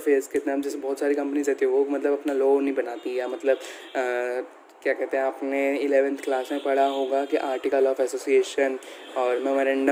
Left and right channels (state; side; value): identical; both; correlation 1.00